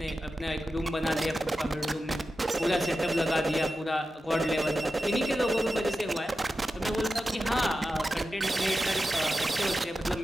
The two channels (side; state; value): both; normal; correlation 0.92